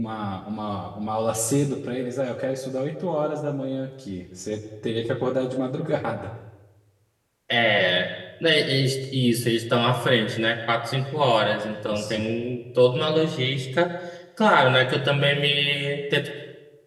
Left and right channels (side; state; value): both; identical; correlation 1.00